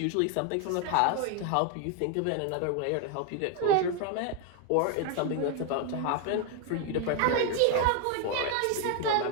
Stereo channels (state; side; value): different; both; correlation 0.01